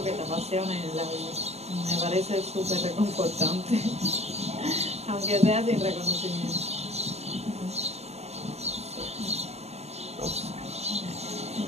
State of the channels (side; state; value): left; late; 0.31 ms